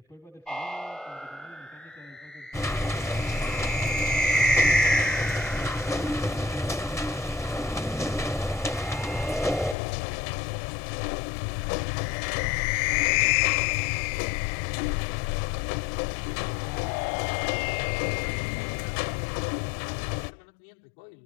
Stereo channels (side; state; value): right; drops out; at 9.8 s